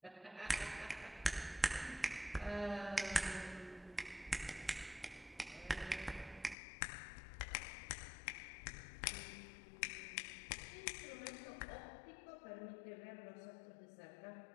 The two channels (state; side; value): drops out; right; at 6.6 s